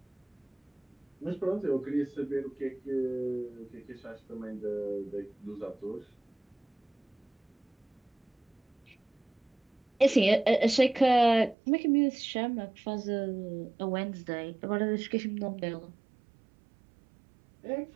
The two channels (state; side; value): drops out; left; at 11.6 s